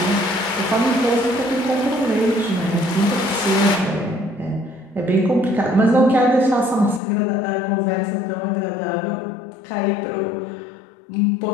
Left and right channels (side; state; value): right; drops out; at 7.0 s